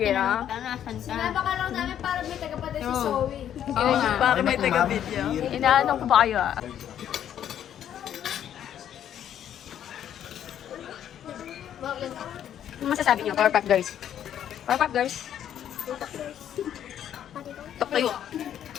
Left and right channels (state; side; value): quieter; right; 10.2 dB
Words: na. Sinaba ka lang namin para may tagapatid si Zoe. Oo nga. Para may taga-video. Inaanong ko ba kayo, ah? Ano masasabi niyo, Powerpuff Girls? Powerpuff Girls? Tok tayo.